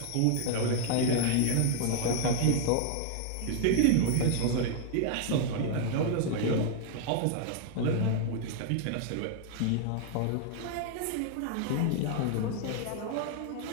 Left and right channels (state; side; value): different; both; correlation 0.00